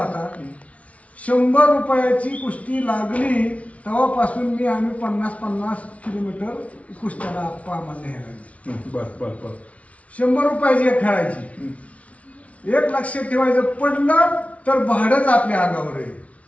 100 रुपयाची कुस्ती लागली तेव्हापासून आम्ही 50-50 किलोमीटर कुस्त्याला आम्हाला न्यायला लागली. बर बर बर. 100 रुपयाची एक खेळायची. एक लक्षात ठेवायचं, पडलं तर भाडंच आपल्या अंगावर आहे.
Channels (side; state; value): right; late; 0.065 ms